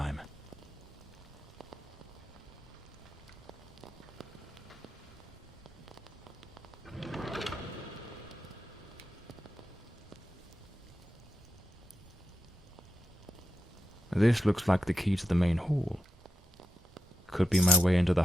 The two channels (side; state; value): both; normal; correlation 0.88